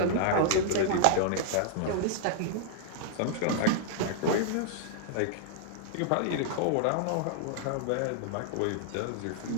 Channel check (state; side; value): different; both; correlation -0.01